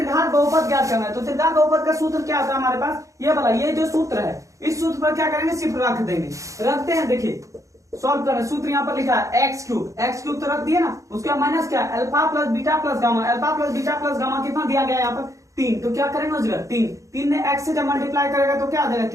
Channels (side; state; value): left; late; 0.15 ms